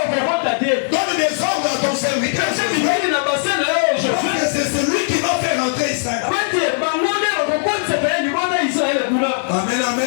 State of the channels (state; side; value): silent; right; digital silence